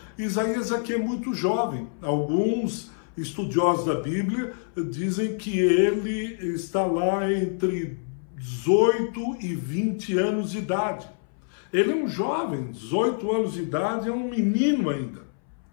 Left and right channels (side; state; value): right; silent; 61 dB below the other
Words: Isaías aqui é muito jovem. Alguns estudiosos da Bíblia dizem que ele está lá entre 18 e 20 anos de idade. Ele é um jovem, 18 anos de idade, é um menino ainda.